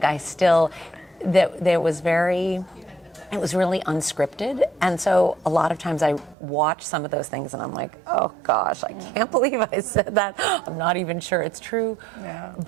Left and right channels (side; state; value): left; drops out; at 6.4 s